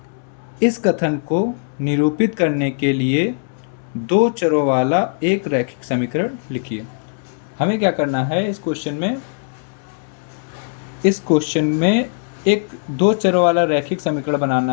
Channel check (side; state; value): right; silent; digital silence